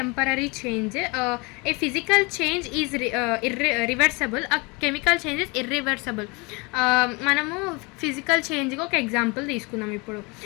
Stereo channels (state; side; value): quieter; right; 27.8 dB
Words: change. A physical change is reversible, chemical change is irreversible. మనము ఫిజికల్ చేంజ్కి ఒక ఎగ్జాంపుల్ తీసుకుందాం. ఇప్పుడు